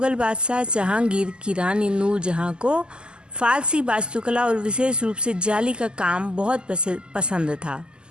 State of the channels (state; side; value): late; left; 0.048 ms